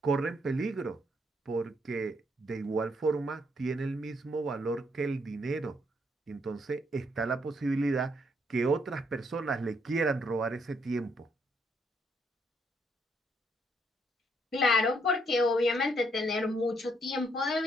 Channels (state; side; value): normal; both; correlation 0.73